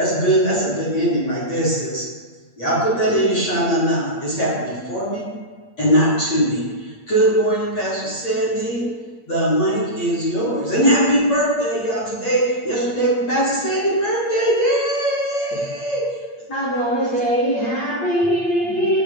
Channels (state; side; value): late; right; 8.6 ms